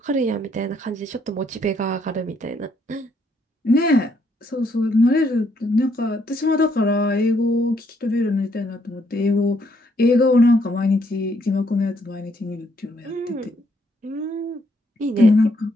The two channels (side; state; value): both; normal; correlation 0.71